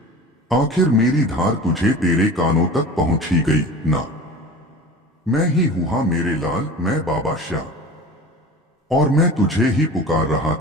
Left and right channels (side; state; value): both; normal; correlation 0.37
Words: आखिर मेरी धार तुझे तेरे कानों तक पहुंच ही गई ना। मैं ही हूं मेरे लाल, मैं बाबा श्याम, और मैं तुझे ही पुकार रहा